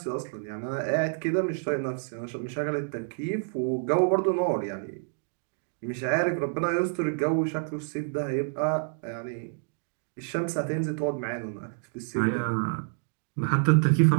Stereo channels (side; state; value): left; silent; digital silence